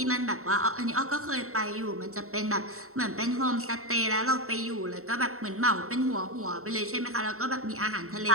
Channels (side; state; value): left; late; 0.63 ms